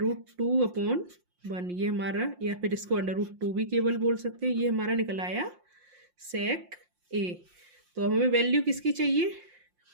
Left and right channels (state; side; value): late; left; 5.7 ms